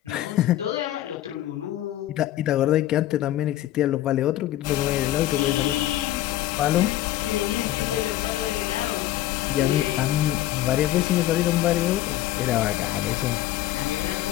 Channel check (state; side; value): quieter; right; 14.2 dB